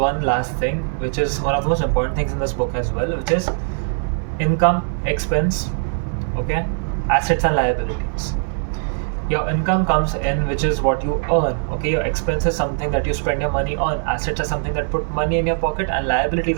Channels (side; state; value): left; silent; 61 dB below the other